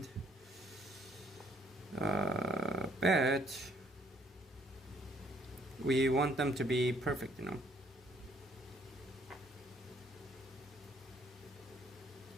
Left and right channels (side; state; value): both; normal; correlation 0.64